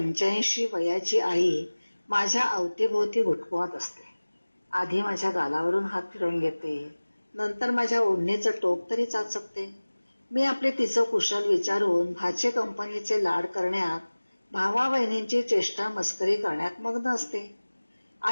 वयाची आई माझ्या अवतीभोवती घुटमळत असते. आधी माझ्या गालावरून हात फिरवून घेते, नंतर माझ्या ओढणीचं टोक तरी चाचपते. मी आपले तिचं कुशल विचारून भाचे कंपनीचे लाड करण्यात, भावा बहिणींची चेष्टा मस्करी करण्यात मग्न असते.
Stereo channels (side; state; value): both; inverted; correlation -1.00